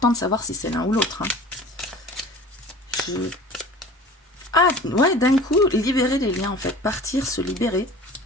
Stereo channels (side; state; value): both; normal; correlation 0.42